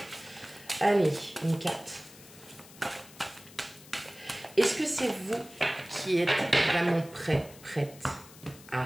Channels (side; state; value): left; noise; hiss, 20 dB below the sound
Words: Allez, une carte. Est-ce que c'est vous qui êtes vraiment prête?